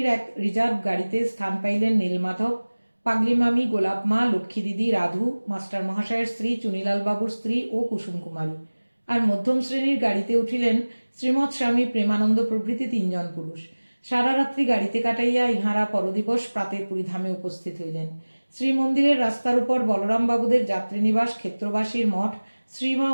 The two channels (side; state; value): both; inverted; correlation -1.00